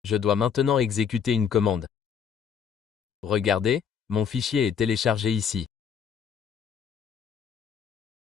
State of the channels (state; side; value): quieter; right; 7.4 dB